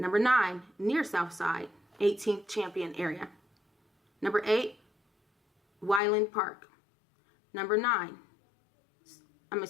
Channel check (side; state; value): right; drops out; at 6.0 s